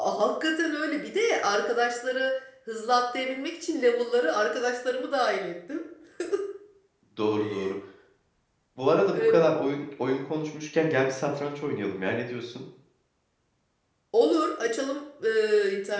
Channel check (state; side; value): identical; both; correlation 1.00